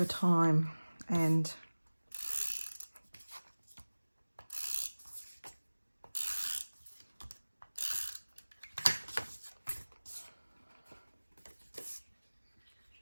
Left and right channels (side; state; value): both; inverted; correlation -1.00